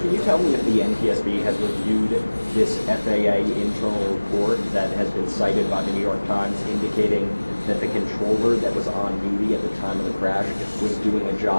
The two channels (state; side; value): inverted; both; correlation -1.00